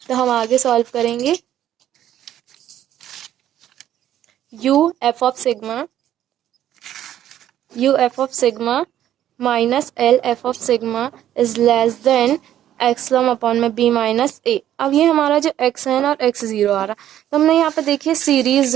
तो हम आगे सॉल्व करेंगे, U F of sigma minus L F of sigma is less than epsilon upon में बी माइनस ए। अब ये हमारा जो एक्स एन और एक्स जीरो आ रहा, तो हमने यहाँ पे देखिए सीरीज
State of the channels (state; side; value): quieter; left; 11.6 dB